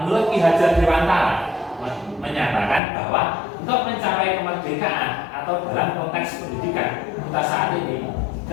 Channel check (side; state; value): right; drops out; at 2.8 s